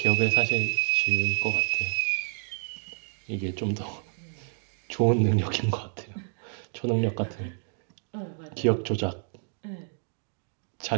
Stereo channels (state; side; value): silent; left; digital silence